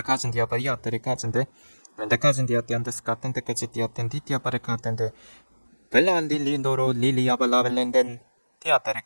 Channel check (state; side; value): inverted; both; correlation -1.00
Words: 디아바리 아테리카진데 멘데카진 디아테안데스 카텐 데까지 디아텐 디티아바레 카텐데 벨란 릴리노로 릴리아발라벨렌덴